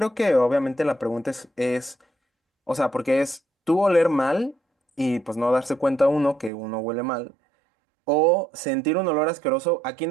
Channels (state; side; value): drops out; left; at 6.5 s